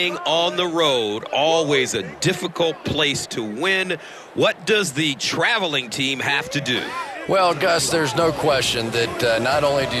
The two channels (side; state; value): both; identical; correlation 1.00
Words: on the road, always a difficult place to win. What does the traveling team have to do? Well, Gus, there's no question that not only do